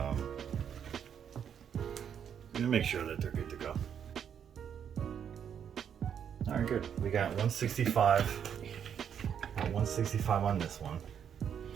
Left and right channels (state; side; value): quieter; left; 8.3 dB